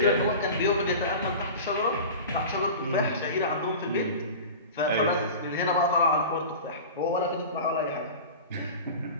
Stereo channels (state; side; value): inverted; both; correlation -0.33